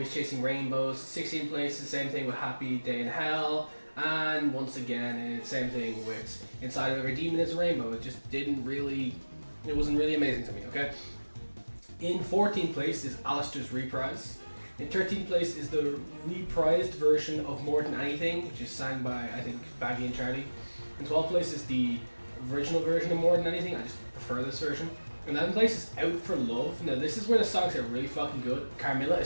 Chasing Rainbows. 16th place. The same thing with Happy Day in Hell. And once again, it's same thing with Inside of Every Demon is a Rainbow. It just didn't really. It wasn't really amazing to me. Okay. In 14th place is Alistair's Reprise. In 13th place is the reprised version of More Than Anything, which is sang by I think Baggy and Charlie. In 12th place is the original version of More Than Anything. I just prefer this version. In 11th place is Out for Love. Now this is where the songs are really fucking good. Carmilla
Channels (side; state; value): both; inverted; correlation -1.00